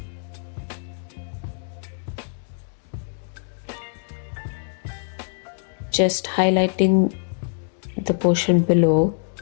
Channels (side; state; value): right; silent; digital silence